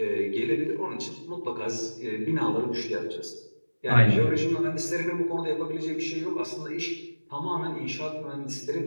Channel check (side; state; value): both; inverted; correlation -1.00